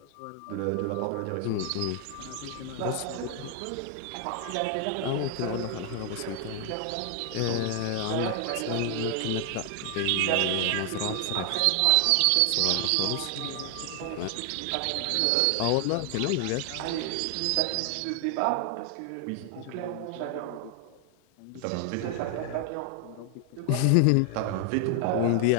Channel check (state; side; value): different; both; correlation 0.00